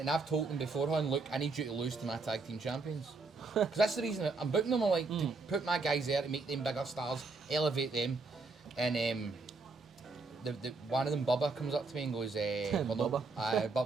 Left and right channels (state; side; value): quieter; left; 3.8 dB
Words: I've told them beforehand, look, I need you to lose to my tag team champions. Because that's the reason I'm booking them. I like to put my guys there to make them bigger stars, elevate them. And the one of them, Bubba, comes up to me and goes, Bubba?